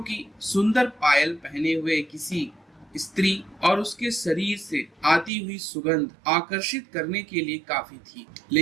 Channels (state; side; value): drops out; left; at 5.3 s